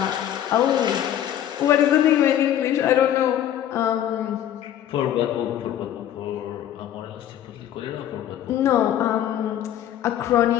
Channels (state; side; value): quieter; right; 11.1 dB